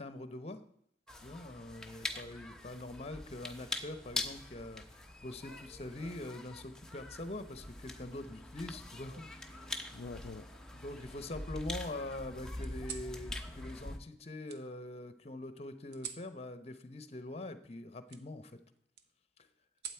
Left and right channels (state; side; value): normal; both; correlation 0.56